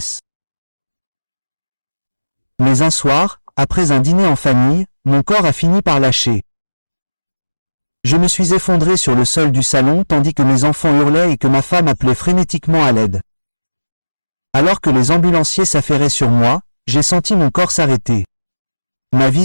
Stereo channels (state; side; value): inverted; both; correlation -1.00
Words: Mais un soir, après un dîner en famille, mon corps a fini par lâcher. Je me suis effondré sur le sol du salon tandis que mes enfants hurlaient et que ma femme appelait frénétiquement à l'aide. Alors que les ambulanciers s'affairaient sur moi, j'ai senti mon corps s'arrêter. Ma